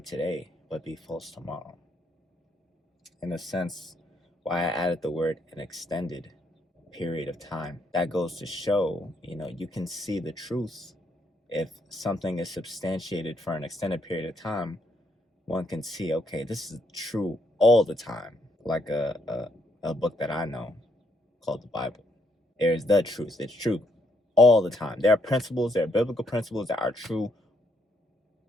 today, but be false tomorrow. In a sense, why I added the word an extended period of time. That goes to show, you can see the truth. If something is substantiated for an extended period of time, one can see, okay, this is true all the time. Like a book that I know called the Bible. There's the truth. It's true all the time. There are biblical principles that are true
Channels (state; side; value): normal; both; correlation 0.74